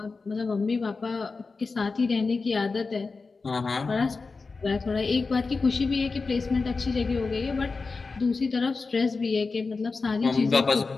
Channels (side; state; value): right; quieter; 4.2 dB